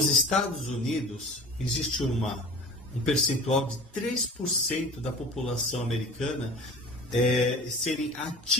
Estados Unidos, existe um percentual de 3% da população americana serem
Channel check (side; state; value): both; normal; correlation 0.39